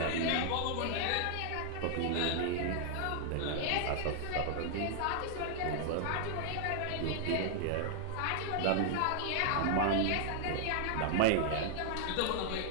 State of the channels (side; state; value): both; different; correlation 0.00